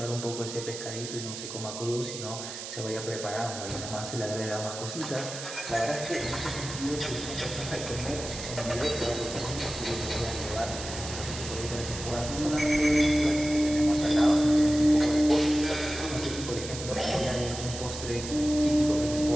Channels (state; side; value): noise; right; hiss, 9 dB below the sound